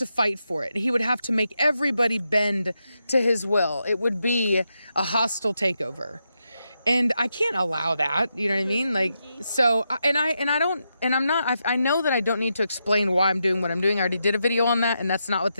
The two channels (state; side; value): inverted; both; correlation -0.85